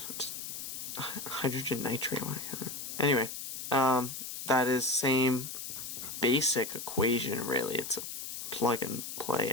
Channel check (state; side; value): noise; left; hiss, 7 dB below the sound